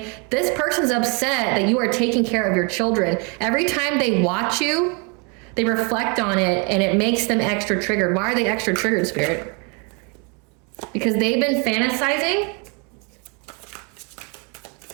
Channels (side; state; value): left; quieter; 33.6 dB